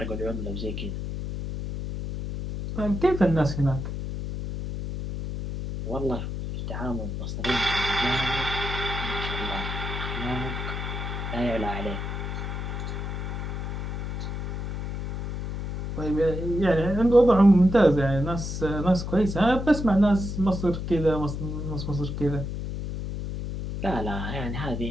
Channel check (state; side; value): noise; left; hum, 4 dB below the sound